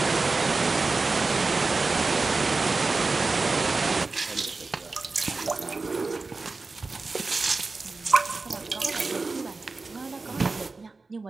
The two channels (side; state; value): left; quieter; 3.8 dB